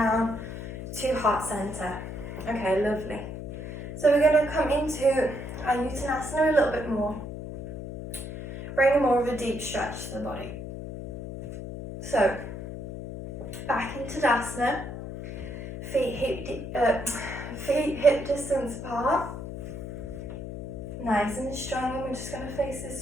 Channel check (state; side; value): noise; left; hum, 8 dB below the sound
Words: to heart center. Okay, lovely. So we're going to come into our Uttanasana a little bit more. Bring more of a deep stretch to the body. So, back into Tadasana. Feet hip distance apart. Nice and strong. And we're just going to face